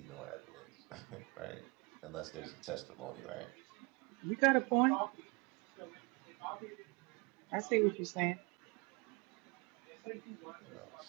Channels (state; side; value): quieter; left; 28.8 dB